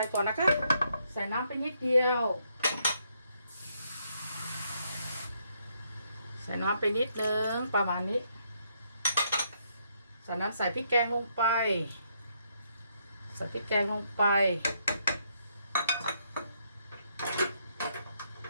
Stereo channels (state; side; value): inverted; both; correlation -0.74